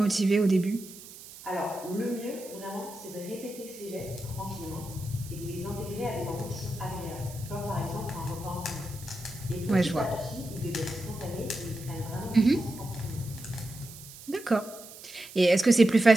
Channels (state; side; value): noise; right; hiss, 16 dB below the sound